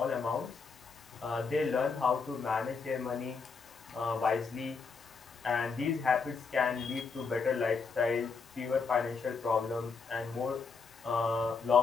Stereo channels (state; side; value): quieter; right; 5.0 dB